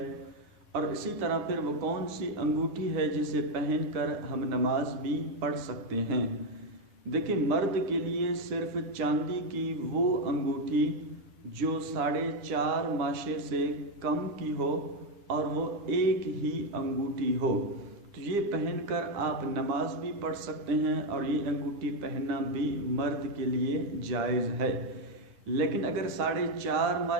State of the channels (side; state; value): left; late; 10 ms